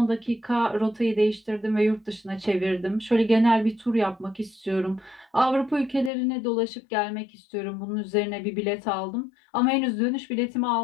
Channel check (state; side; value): drops out; right; at 6.1 s